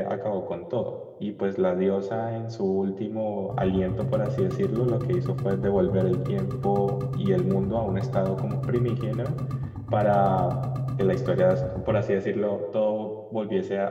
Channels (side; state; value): both; identical; correlation 1.00